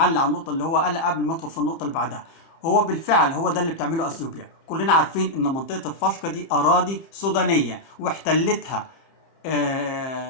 على النقطه اللي هو قالها قبل ما ادخل في النقطه اللي بعدها. هو بالفعل هو ده اللي بتعمله اثيوبيا. كلنا عارفين ان منطقه الفشقه دي اراضي سودانيه واحتلتها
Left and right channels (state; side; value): late; right; 30 ms